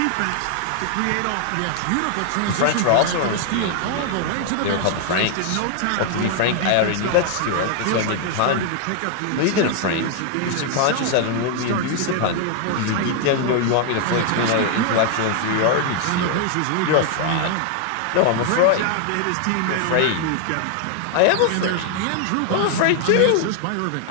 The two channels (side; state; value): both; different; correlation 0.00